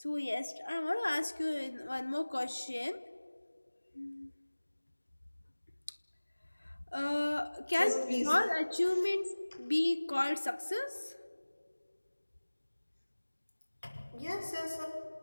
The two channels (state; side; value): inverted; both; correlation -1.00